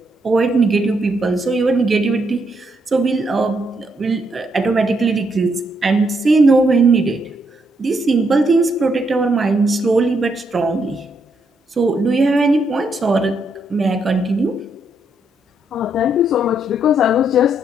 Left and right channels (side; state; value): both; normal; correlation 0.76